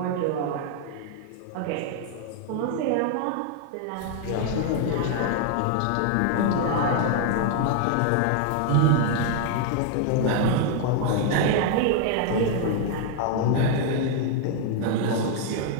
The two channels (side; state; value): both; different; correlation 0.00